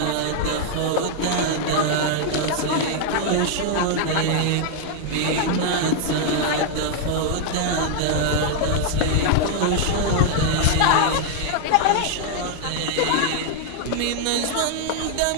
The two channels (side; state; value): both; different; correlation -0.01